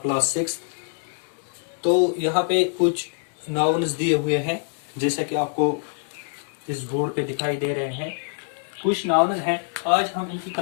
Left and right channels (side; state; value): right; silent; digital silence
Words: class 6. तो यहाँ पे कुछ nouns दिए हुए हैं जैसा कि आपको इस बोर्ड पे दिखाई दे रहे हैं. कुछ nouns हैं, आज हम इनकी